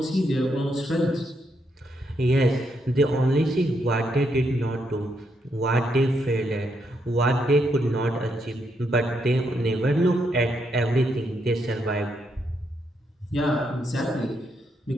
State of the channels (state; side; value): normal; both; correlation 0.78